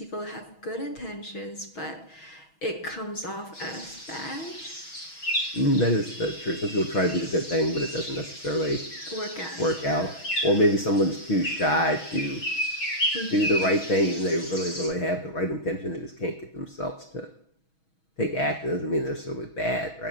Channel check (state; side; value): late; right; 6.2 ms